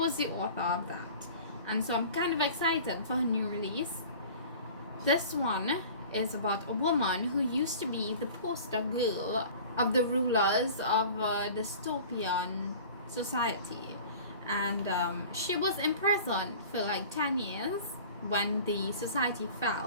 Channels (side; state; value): both; inverted; correlation -0.42